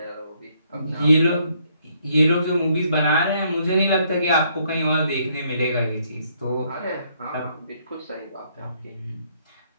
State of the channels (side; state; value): both; inverted; correlation -0.69